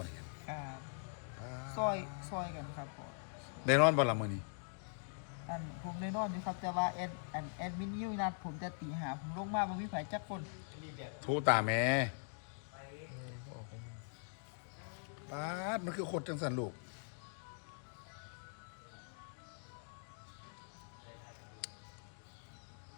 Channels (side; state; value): right; silent; digital silence